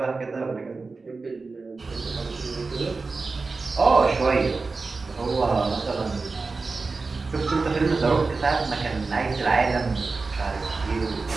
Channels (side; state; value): left; quieter; 4.0 dB